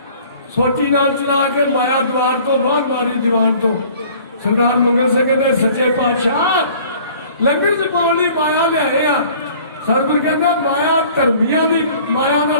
सोटी नाल चला के माया द्वार तो बाहर मारी दीवान तो सरदार मंगल सिंह कहते सच्चे पातशाह लंगर च पाउण लई माया लिआए आ सतगुरु कहंदा माया धर्मियां दी माया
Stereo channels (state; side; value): inverted; both; correlation -0.51